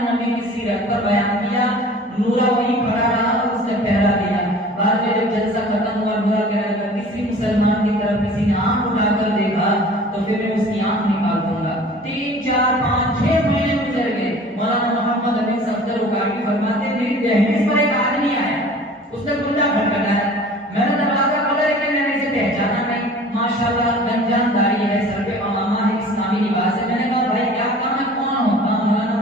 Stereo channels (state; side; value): normal; both; correlation 0.45